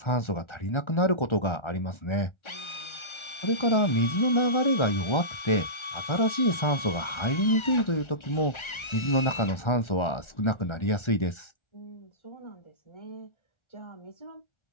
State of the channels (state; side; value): late; right; 1.4 ms